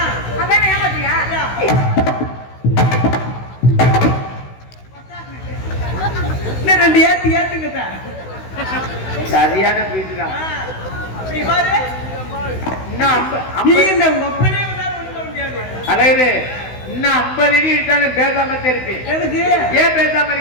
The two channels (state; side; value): late; right; 16 ms